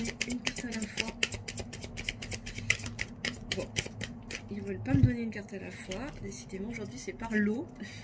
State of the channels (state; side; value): identical; both; correlation 1.00